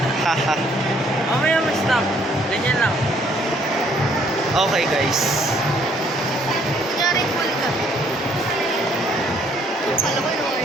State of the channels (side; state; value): both; normal; correlation 0.64